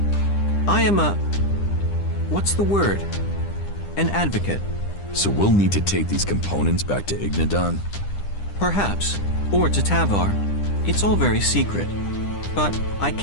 I am a... what's the word? An advocate. So we'll need to take these components back to Ignadon? Perhaps. Or to Tavar. It's all very secret. But I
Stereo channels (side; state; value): right; late; 10 ms